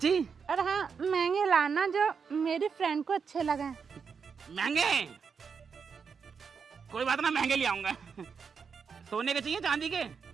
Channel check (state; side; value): quieter; left; 6.0 dB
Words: और हाँ, महंगे लाना जो मेरी फ्रेंड को अच्छे लगे। महंगे? कोई बात ना, महंगे ले आऊंगा। सोने के चाहिए चांदी के?